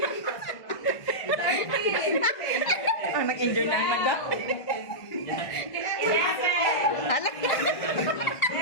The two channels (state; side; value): late; right; 1.5 ms